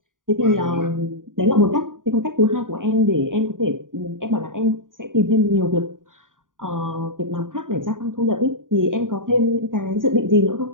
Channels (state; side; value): late; left; 0.89 ms